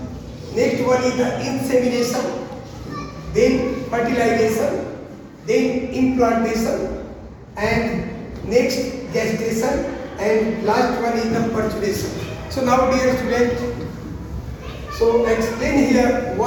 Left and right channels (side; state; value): both; identical; correlation 1.00